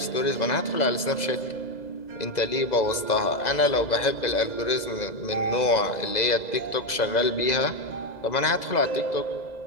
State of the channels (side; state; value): right; late; 2.0 ms